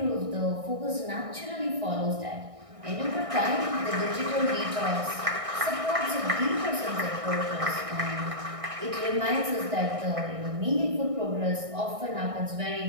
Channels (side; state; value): left; late; 1.6 ms